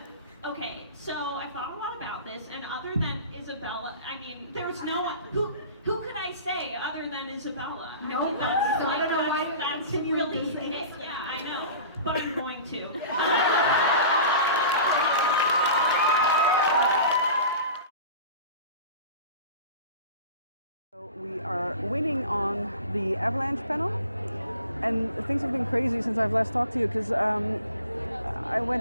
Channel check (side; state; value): both; inverted; correlation -0.40